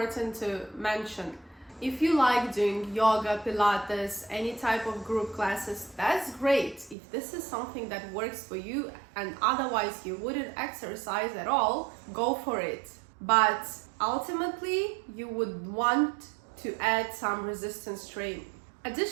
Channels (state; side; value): drops out; left; at 7.0 s